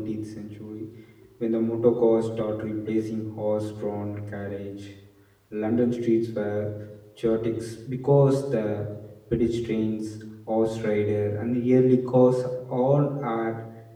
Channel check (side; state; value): both; identical; correlation 1.00